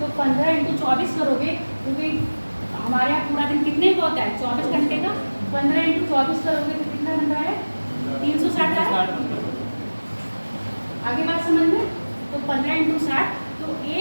15 × 24 करोगे, क्योंकि हमारे यहाँ पूरा दिन कितने का होता है? 24 घंटे का। 15 × 24 करोगे तो कितना बन रहा है? 360 है। आगे बात समझ में? तो 15 × 60, तो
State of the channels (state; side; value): inverted; both; correlation -1.00